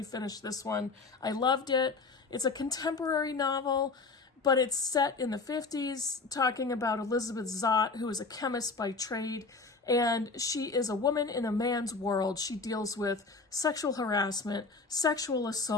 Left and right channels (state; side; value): quieter; right; 4.1 dB